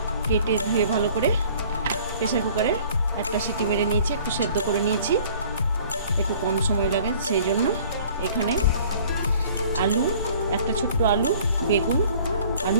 কেটে ধুয়ে ভালো করে প্রেসার কুকারে একটা সিটি মেরে নিয়েছি, একটু সেদ্ধ করে নিয়েছি, একটু কম সময় লাগে সেই জন্য। এখানে আলু, একটা ছোট্ট আলু, বেগুন আর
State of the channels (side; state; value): both; inverted; correlation -0.52